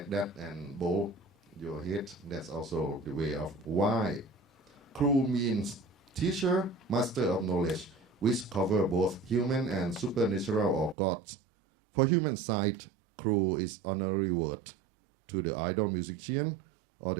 that and bow your head. That's also the way of why. Khru means teacher, master of knowledge, which cover both human and supernatural or gods. For human side, Khru is honorary word to the idol musician or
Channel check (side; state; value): left; drops out; at 11.0 s